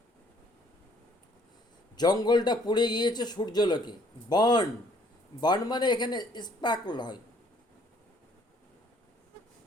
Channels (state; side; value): normal; both; correlation 0.61